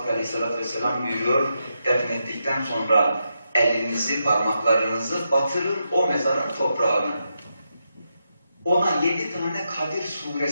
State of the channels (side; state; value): both; inverted; correlation -0.84